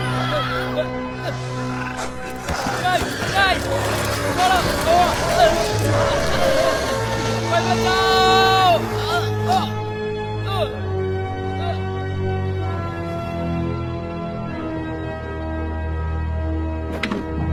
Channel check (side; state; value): both; identical; correlation 1.00